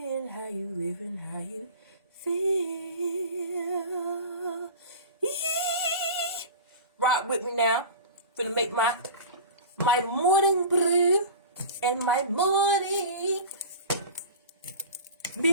How you living? How you feel? Eee! Rock with me now. Finna make my morning brew and my morning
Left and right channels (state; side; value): inverted; both; correlation -0.35